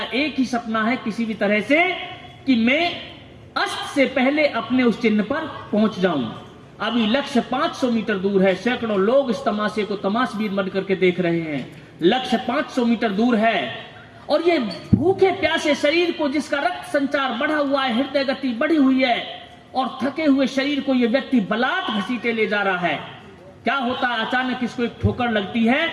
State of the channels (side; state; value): both; identical; correlation 1.00